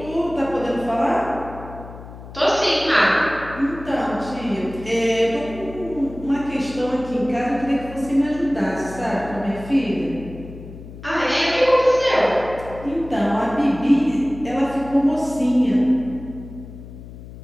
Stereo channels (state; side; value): noise; left; hum, 15 dB below the sound